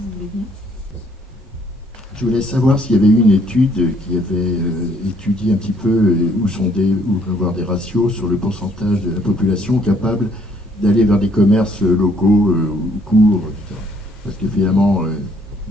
voulez bien. Je voulais savoir s'il y avait eu une étude qui avait étudié un petit peu ou avoir des ratios sur le pourcentage de la population capable d'aller vers des commerces locaux ou courts, etc. Parce que finalement,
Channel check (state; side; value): normal; both; correlation 0.65